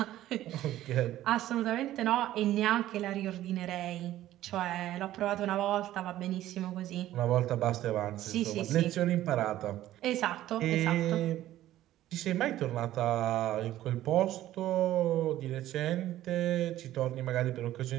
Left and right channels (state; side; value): quieter; left; 13.9 dB